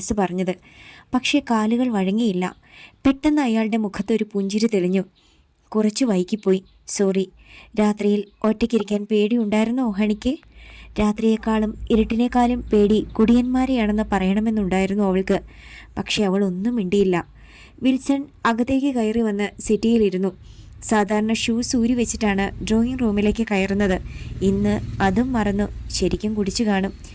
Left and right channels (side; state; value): both; identical; correlation 1.00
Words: പറഞ്ഞത്. പക്ഷേ കാലുകൾ വഴങ്ങിയില്ല. പെട്ടെന്ന് അയാളുടെ മുഖത്തൊരു പുഞ്ചിരി തെളിഞ്ഞു. കുറച്ച് വൈകിപ്പോയി, സോറി. രാത്രിയിൽ ഒറ്റയ്ക്കിരിക്കാൻ പേടിയുണ്ടായിരുന്നോ ഹണിക്ക്? രാത്രിയേക്കാളും ഇരുട്ടിനേക്കാളും പേടി കുടിയന്മാരെയാണെന്ന് പറയണമെന്നുണ്ടായിരുന്നു അവൾക്ക്. പക്ഷെ അവൾ ഒന്നും മിണ്ടിയില്ല. വിൽസൺ അകത്തേക്ക് കയറി വന്ന് സിറ്റിയിലിരുന്നു. സാധാരണ ഷൂസ് ഊരി വെച്ചിട്ടാണ് ഡ്രോയിങ് റൂമിലേക്ക് കയറുന്നത്. ഇന്ന് അതും മറന്നു. ശരിക്കും കുടിച്ചു കാണും.